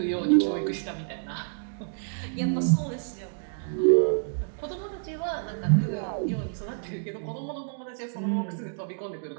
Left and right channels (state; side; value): silent; left; digital silence